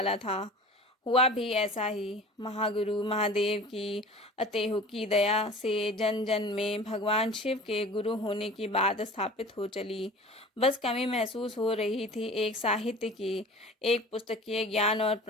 था। हुआ भी ऐसा ही। महागुरु महादेव की अतेहुकी दया से जन जन में भगवान शिव के गुरु होने की बात स्थापित हो चली। बस कमी महसूस हो रही थी एक साहित्य की, एक पुस्तकीय ज्ञान और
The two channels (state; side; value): normal; both; correlation 0.41